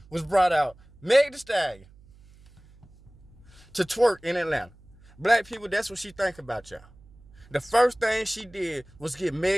was brought out Meg Thee Stallion to twerk in Atlanta. Black people, that's what she think about y'all. The first thing she did was get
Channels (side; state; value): right; noise; hum, 25 dB below the sound